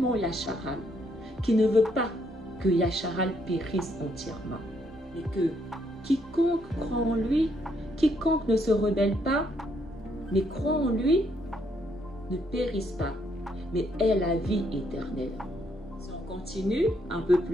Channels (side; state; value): both; normal; correlation 0.73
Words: Yasharal qu'il ne veut pas que Yasharal périsse entièrement. Mais que quiconque croit en lui, quiconque ne se rebelle pas, mais croit en lui, ne périsse pas, mais ait la vie éternelle. Si on continue un peu